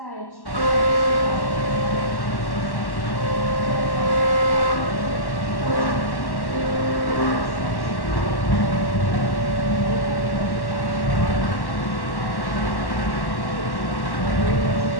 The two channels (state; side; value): late; right; 1.1 ms